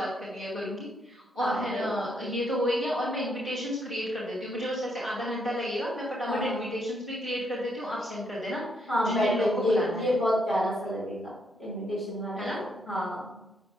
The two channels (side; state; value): both; normal; correlation 0.74